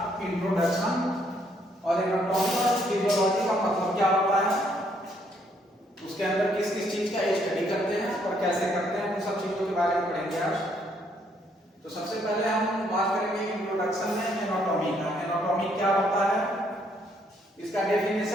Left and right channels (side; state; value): both; normal; correlation 0.70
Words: इंट्रोडक्शन। और एनाटॉमी और फिजियोलॉजी का मतलब क्या होता है, उसके अंदर किस किस चीज का स्टडी करते हैं और कैसे करते हैं, उन सब चीजों के बारे में पढ़ेंगे आज। तो सबसे पहले हम बात करेंगे इंट्रोडक्शन में एनाटॉमी का। एनाटॉमी क्या होता है, इसका